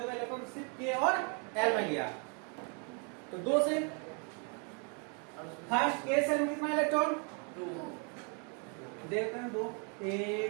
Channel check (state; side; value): quieter; left; 37.6 dB